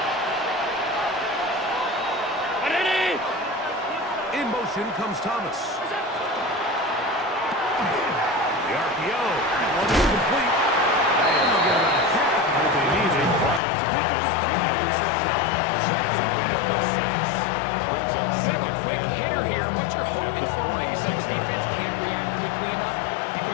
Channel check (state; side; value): drops out; right; at 13.6 s